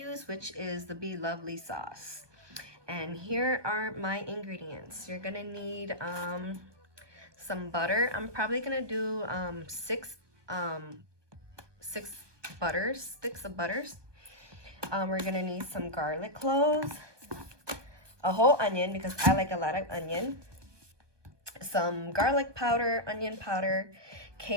which is the Be Lovely sauce. And here are my ingredients. You're going to need some butter. I'm probably going to do six sticks of butters. We're going to need some garlic cloves, a whole onion because I like a lot of onion, some garlic powder, onion powder,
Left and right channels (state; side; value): late; left; 1.2 ms